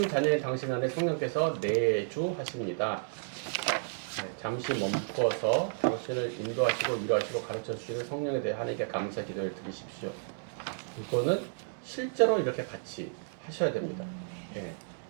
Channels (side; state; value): left; silent; digital silence